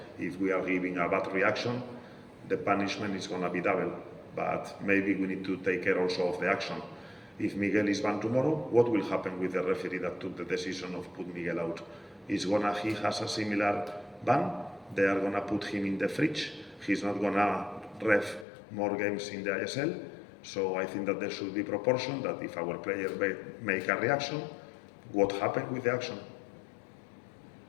if we are giving a bad reaction, the punishment is going to be double. But maybe we need to take care also of the action. If Miguel is banned tomorrow, what will happen with the referee that took the decision of put Miguel out? He has a similar ban. They are going to put him in the fridge. He's not going to ref more games in the ISL. So I think that there should be proportion, that if our players make a reaction, what happened with the action?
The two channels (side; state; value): right; drops out; at 18.4 s